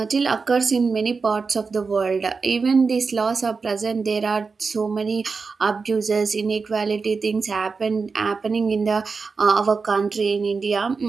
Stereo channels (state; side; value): quieter; left; 4.7 dB